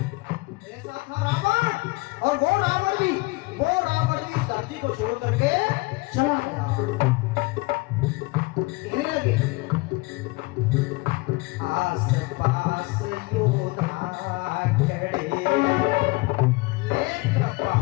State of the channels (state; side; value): quieter; right; 24.4 dB